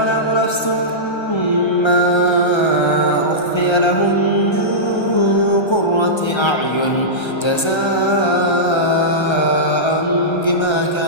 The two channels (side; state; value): right; late; 1.3 ms